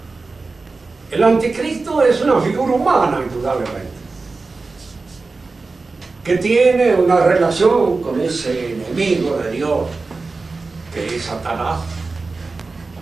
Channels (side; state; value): left; quieter; 3.9 dB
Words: El anticristo es una figura humana, indudablemente, que tiene una relación con ese enemigo de Dios, que es Satanás,